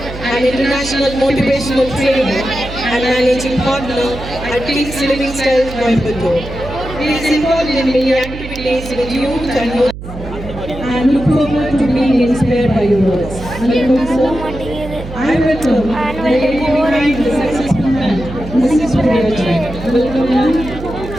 and International Motivational Trainer and Managing Partner at King's Living Style, Coimbatore. He is involved in many activities with youth and look forward to being inspired by your words. Welcome, sir. I welcome the successful man, Mrs. Guriyajin. Welcome, ma'am.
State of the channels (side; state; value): right; noise; hum, 11 dB below the sound